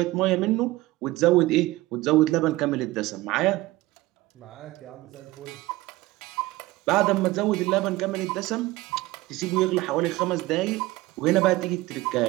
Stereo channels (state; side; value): quieter; left; 18.9 dB